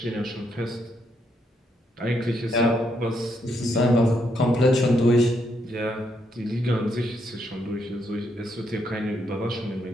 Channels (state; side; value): normal; both; correlation 0.76